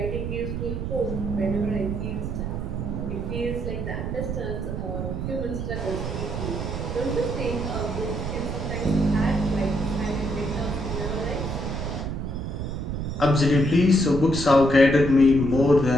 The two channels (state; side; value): noise; right; rumble, 3 dB below the sound